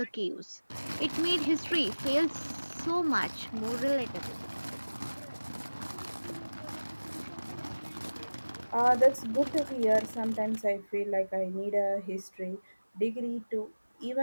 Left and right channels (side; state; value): both; inverted; correlation -1.00